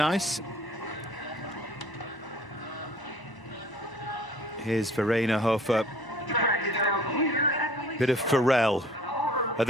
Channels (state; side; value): normal; both; correlation 0.51